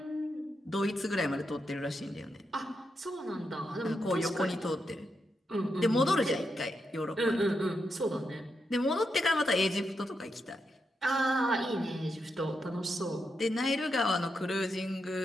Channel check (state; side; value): normal; both; correlation 0.84